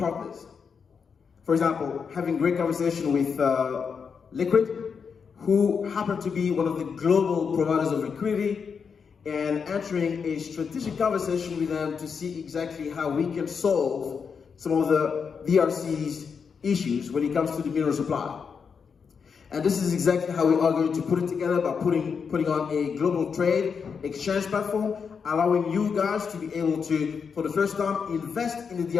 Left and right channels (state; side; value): quieter; right; 6.1 dB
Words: For example, having great conversation with Liquid, who happen to be one of the global providers of liquidity, and entering a strategic conversation with them to see exactly how we can solve some of the DRC's issues when it comes to the mineral supply. And this is exactly how we are going to put it together, by putting on a global trade exchange platform, allowing you guys to be able to, for the first time, invest in the